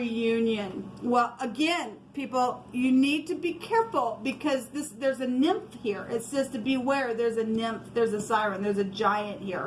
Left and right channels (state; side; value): identical; both; correlation 1.00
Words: Well, again, people, you need to be careful because there's a nymph here. It says to beware. There's a nymph. There's a siren. There's a giant